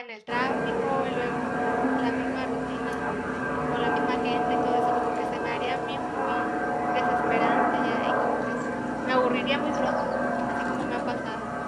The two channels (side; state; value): both; identical; correlation 1.00